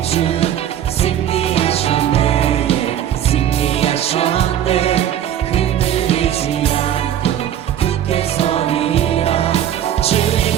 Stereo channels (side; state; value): left; quieter; 10.7 dB